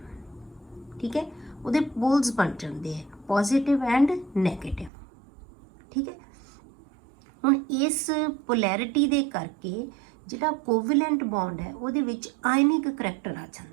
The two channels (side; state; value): left; drops out; at 4.9 s